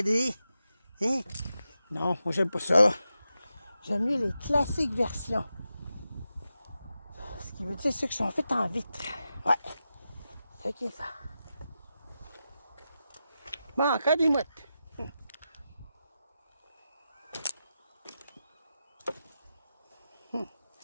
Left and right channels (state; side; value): inverted; both; correlation -0.90